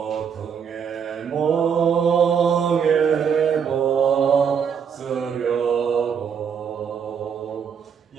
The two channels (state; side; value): quieter; left; 7.2 dB